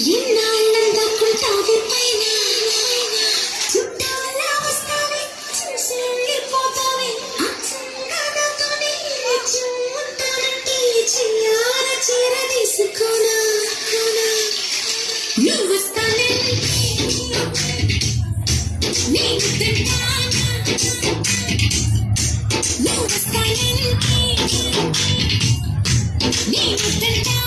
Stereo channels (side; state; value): both; identical; correlation 1.00